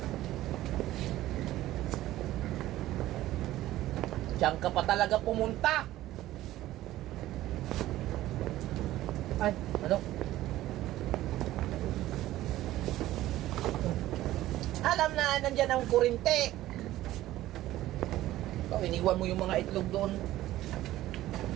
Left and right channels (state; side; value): quieter; left; 15.1 dB